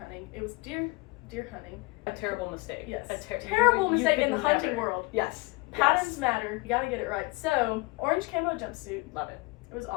It was deer hunting. A terrible mistake. Yes. A terrible mistake in the could hunting never. world. Yes. Patterns matter. You gotta get it right. So, orange camo jumpsuit. Love it. It was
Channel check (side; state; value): right; quieter; 24.6 dB